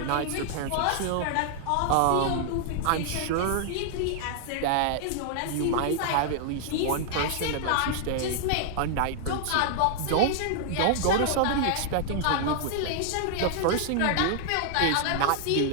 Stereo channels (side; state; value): both; different; correlation -0.01